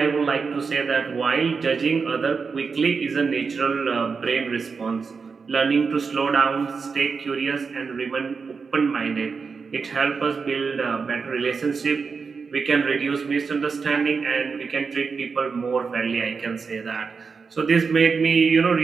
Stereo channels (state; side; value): quieter; left; 5.1 dB